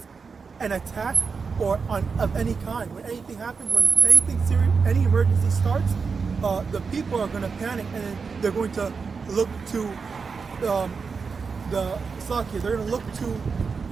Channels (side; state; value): left; quieter; 5.2 dB